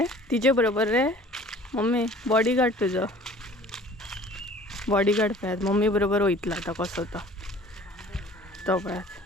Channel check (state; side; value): normal; both; correlation 0.49